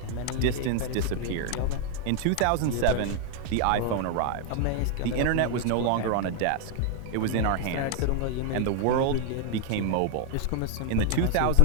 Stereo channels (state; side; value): different; both; correlation 0.00